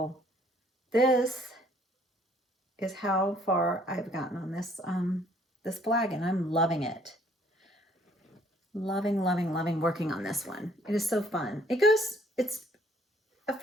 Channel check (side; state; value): both; normal; correlation 0.61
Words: this is how far I've gotten on this this flag, and I'm loving it. Loving, loving, loving working on this one. It is so fun. It's a